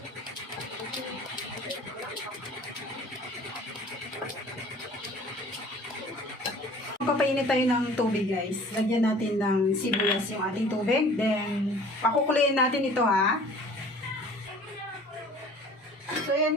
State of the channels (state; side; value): normal; both; correlation 0.48